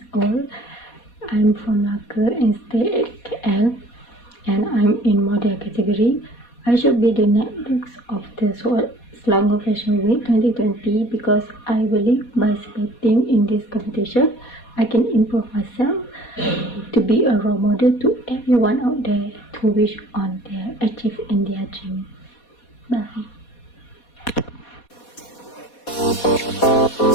old. I'm from Malacca and stay at KL and I'm in model category. I should be the next of the Selangor Fashion Week 2020 because I believe by participating in this competition, I can improve myself to be a role model to everyone out there to wish on their achieve in their dream. Bye.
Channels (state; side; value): late; right; 4.2 ms